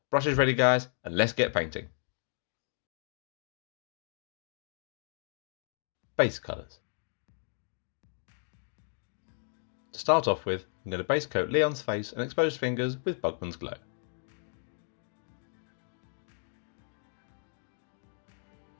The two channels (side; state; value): right; silent; digital silence